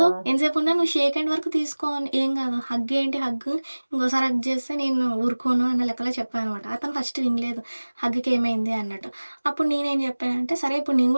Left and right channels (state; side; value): inverted; both; correlation -1.00